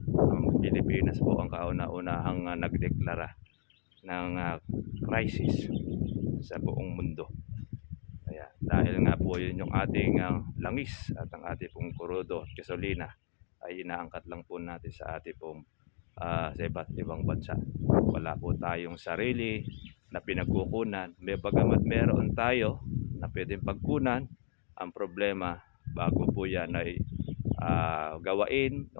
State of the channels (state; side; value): silent; right; digital silence